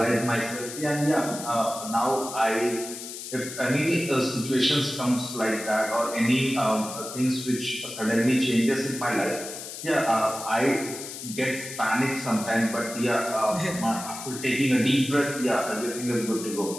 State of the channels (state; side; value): noise; left; hiss, 10 dB below the sound